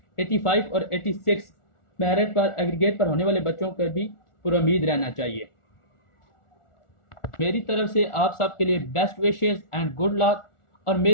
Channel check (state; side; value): late; right; 1.4 ms